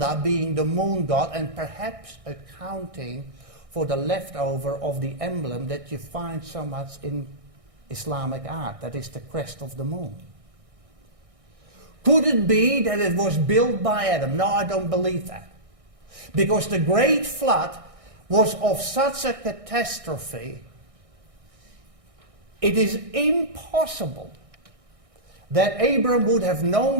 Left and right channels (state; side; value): late; left; 1.6 ms